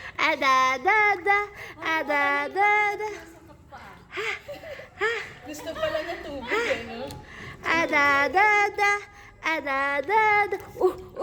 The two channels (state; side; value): identical; both; correlation 1.00